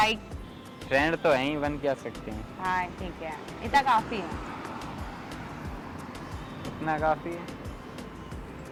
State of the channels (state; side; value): identical; both; correlation 1.00